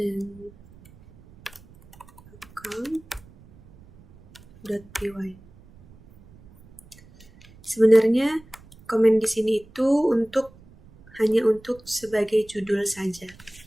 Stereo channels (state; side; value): noise; right; rumble, 25 dB below the sound